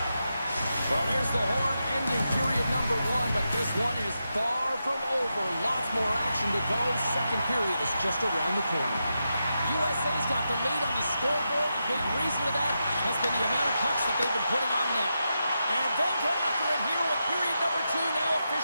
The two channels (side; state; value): both; inverted; correlation -0.87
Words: Well, there's the horn ending period number one, but this one is far from over. Lots more action to go. Second period is just around the corner. USA's got the lead on the scoreboard. A big reason for that has been the amount of pucks that they've been putting on net. And they'll get after it here with period number two now